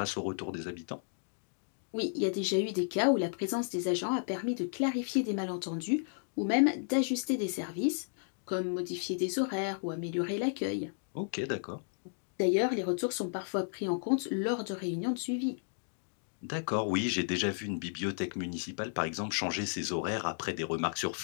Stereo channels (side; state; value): right; silent; digital silence